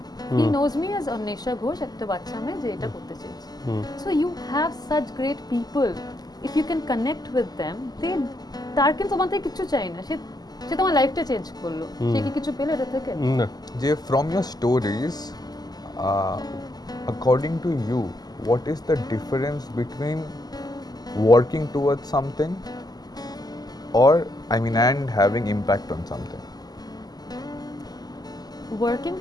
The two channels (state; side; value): late; right; 0.19 ms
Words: He knows me as Anwesha Ghosh, একটা বাচ্চা মেয়ে যে এটা করতে চেয়েছে। So you have such great people, if you can connect with them, তার কিন্তু তোমার থেকে কিছু চাই না, সে তোমার লাইফটা চেঞ্জ করলো, সে কি কিছু পেলো এটা থেকে? যে from your stories, according to you, what is the difference between working towards something and having impact on something? Working